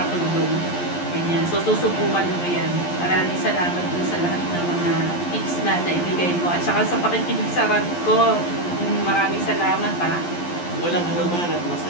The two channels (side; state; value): right; late; 11 ms